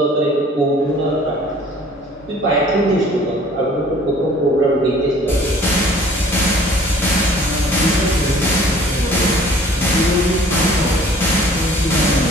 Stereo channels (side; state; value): both; normal; correlation 0.53